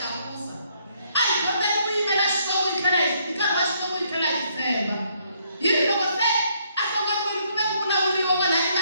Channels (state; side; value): inverted; both; correlation -0.70